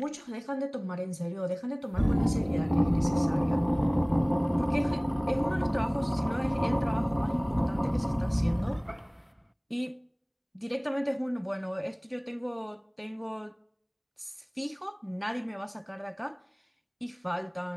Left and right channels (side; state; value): both; identical; correlation 1.00